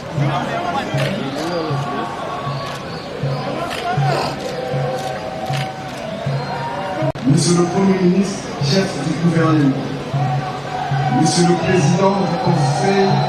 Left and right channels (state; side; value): identical; both; correlation 1.00